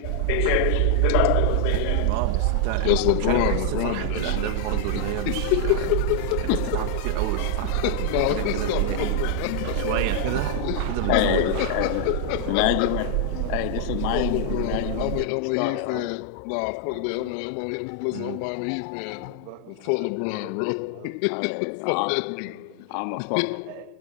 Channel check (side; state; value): both; different; correlation 0.00